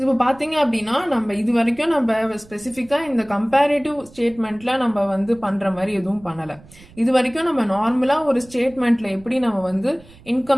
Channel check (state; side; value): noise; right; rumble, 24 dB below the sound